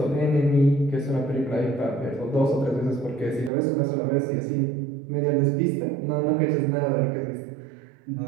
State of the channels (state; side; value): drops out; left; at 3.5 s